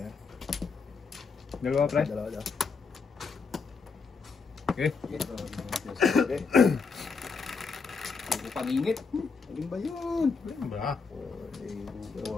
Dalawa, pre. Dalawa daw. Okay. Okay. Hindi pangingit. Alin ba yun? Ba? 4,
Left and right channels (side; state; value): right; quieter; 4.9 dB